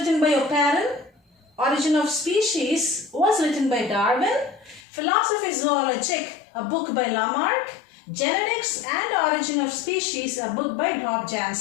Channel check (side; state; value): right; drops out; at 4.8 s